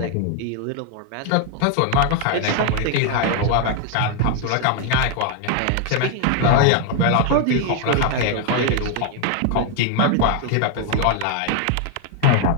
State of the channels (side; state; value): both; different; correlation 0.00